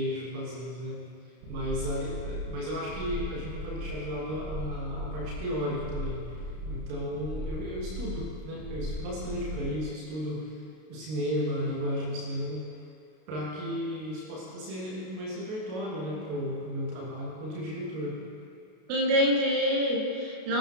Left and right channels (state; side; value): late; left; 32 ms